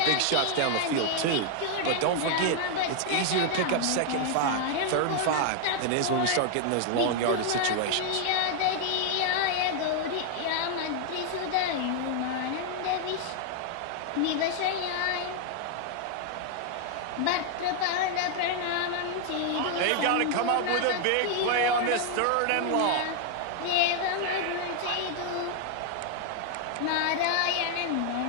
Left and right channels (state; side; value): different; both; correlation 0.00